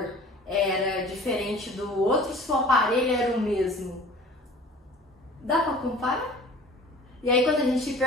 era diferente do outro se o aparelho era o mesmo. Dá para comparar? E aí quando a gente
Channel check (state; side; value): normal; both; correlation 0.45